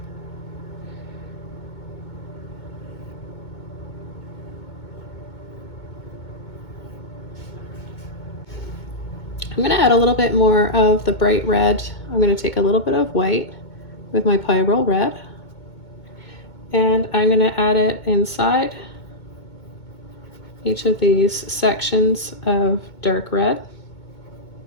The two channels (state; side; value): late; right; 2.2 ms